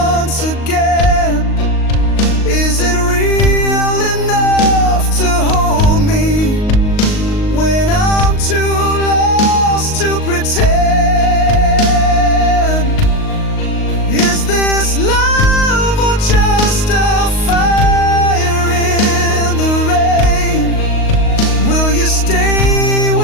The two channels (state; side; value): late; right; 38 ms